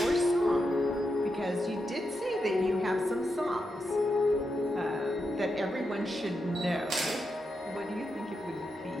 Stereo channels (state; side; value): normal; both; correlation 0.86